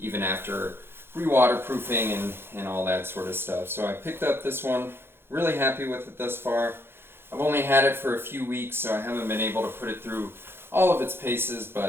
after re-waterproofing and all that sort of stuff. So I picked up this one, really happy with it thus far. I've only had it for a few weeks, so I haven't been able to put it through all of its paces,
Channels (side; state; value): left; late; 0.11 ms